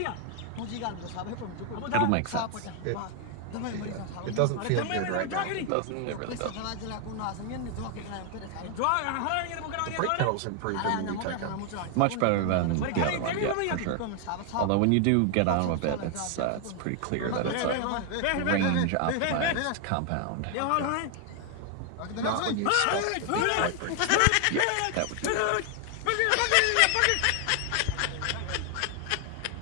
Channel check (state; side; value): different; both; correlation 0.00